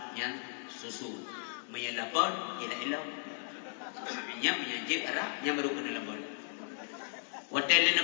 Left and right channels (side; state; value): right; silent; 54 dB below the other